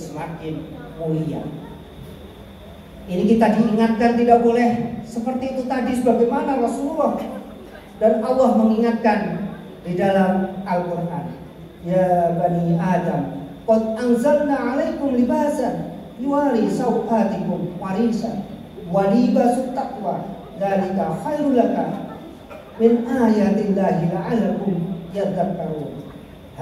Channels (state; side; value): identical; both; correlation 1.00